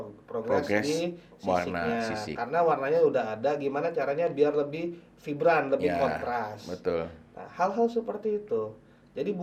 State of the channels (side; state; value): both; identical; correlation 1.00